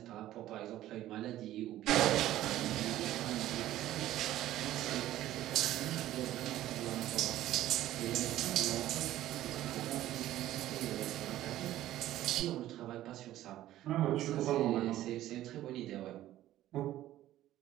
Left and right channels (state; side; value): quieter; left; 14.0 dB